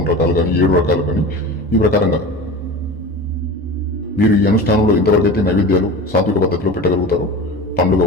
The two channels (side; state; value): both; normal; correlation 0.32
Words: రకాలు కానీ, 7 రకాలు కానీ, ఈ ప్రకారంగా మీరు ఈ అనుష్ఠానంలో ఇంతవరకైతే నైవేద్యాలు సాత్విక పద్ధతిలో పెట్టగలుగుతారు. పండ్లు